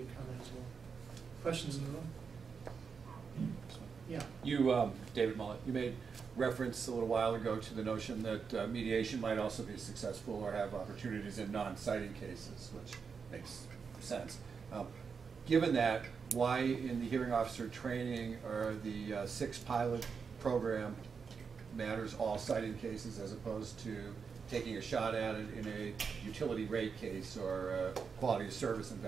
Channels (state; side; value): quieter; left; 5.8 dB